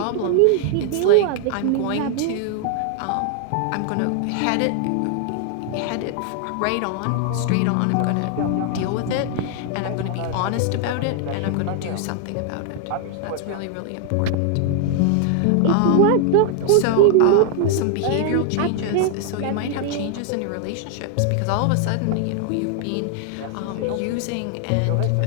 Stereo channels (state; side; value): different; both; correlation 0.00